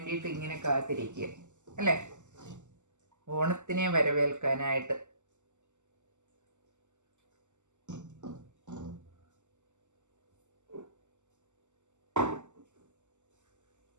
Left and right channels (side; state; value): left; late; 0.84 ms